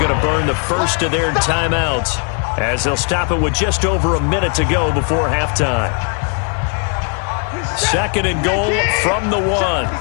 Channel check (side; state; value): right; quieter; 38.8 dB